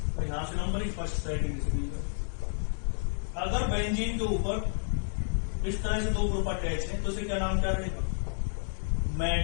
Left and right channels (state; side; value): silent; right; 57 dB below the other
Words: तो यहां से नंबर फर्स्ट सेटिंग से। अगर बेंजीन के ऊपर इस तरह से दो ग्रुप अटैच है तो इसे क्या नाम क्या रहेगा,